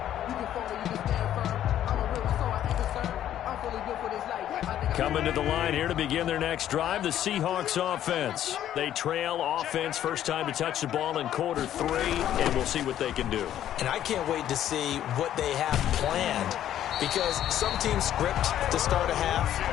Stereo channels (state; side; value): quieter; right; 11.4 dB